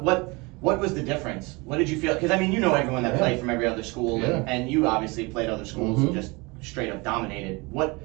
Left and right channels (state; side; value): quieter; left; 26.3 dB